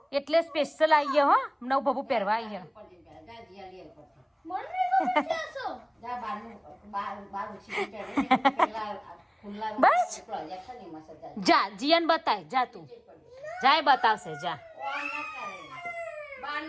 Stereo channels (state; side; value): identical; both; correlation 1.00